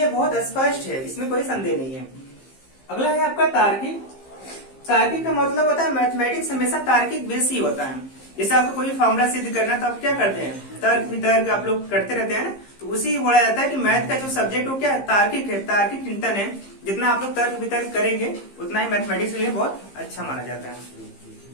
बहुत स्पष्ट है, इसमें कोई संदेह नहीं है। अगला है आपका तार्किक। तार्किक का मतलब होता है मैथमेटिक्स हमेशा तार्किक बेस ही होता है। जैसे आपको कोई फॉर्मूला सिद्ध करना है तो आप क्या करते हैं, तर्क वितर्क आप लोग करते रहते हैं ना, तो उसी बोला जाता है कि मैथ का जो सब्जेक्ट हो क्या है, तार्किक है, तार्किक चिंतन है। जितना आप लोग तर्क वितर्क करेंगे उतना ही मैथमेटिक्स के लिए बहुत अच्छा माना जाता है।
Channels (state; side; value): late; right; 15 ms